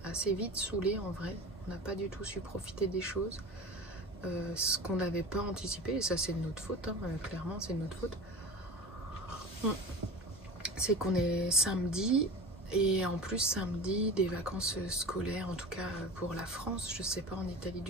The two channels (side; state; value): both; normal; correlation 0.33